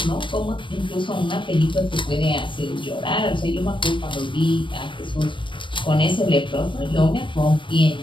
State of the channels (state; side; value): late; right; 0.24 ms